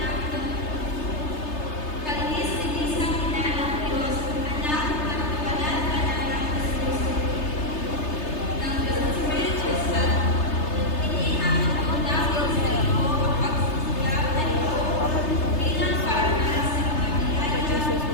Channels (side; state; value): right; late; 3.3 ms